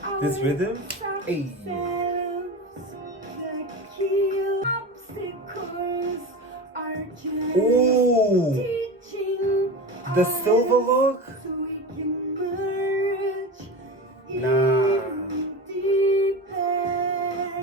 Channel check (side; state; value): both; normal; correlation 0.27